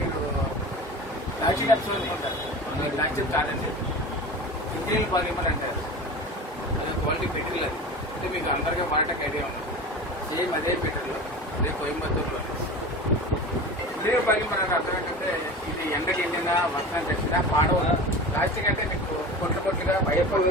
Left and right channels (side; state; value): both; normal; correlation 0.33